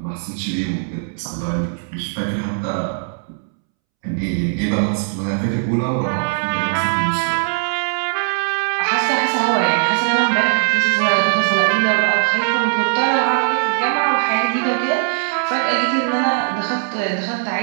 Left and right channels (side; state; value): left; silent; 66 dB below the other